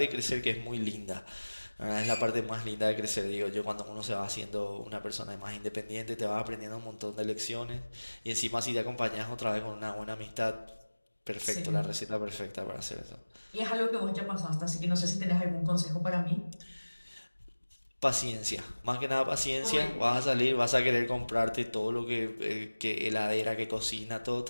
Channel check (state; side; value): inverted; both; correlation -1.00